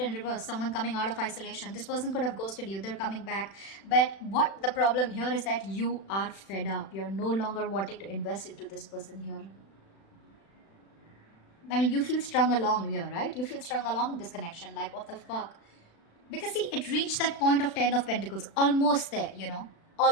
reverse, someone coming out of isolation. This person could have ghosted you. They're coming back. But what the problem here is that you are fed up. You're no longer wanting to invest into this person here. I mean, you feel strung along here, right? You feel strung along in this connection. Like, what the fuck? Because see, it reached that point of 10 of Pentacles. Almost there,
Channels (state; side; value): late; right; 36 ms